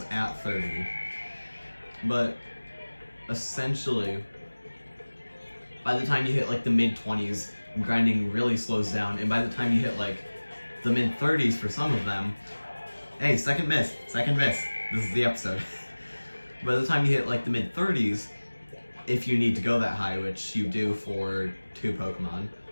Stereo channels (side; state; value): both; inverted; correlation -1.00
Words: at 30. But essentially, by the time you hit like the mid-20s, grinding really slows down, and by the time you hit like the mid-30s for some of them, hey, second miss, this is the episode. By the time you hit like the mid-30s, if you need to go that high, which you do for 2 Pokemon,